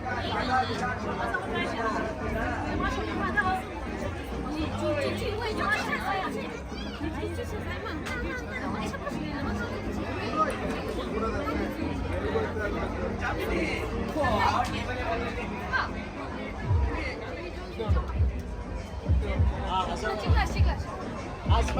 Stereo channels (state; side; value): identical; both; correlation 1.00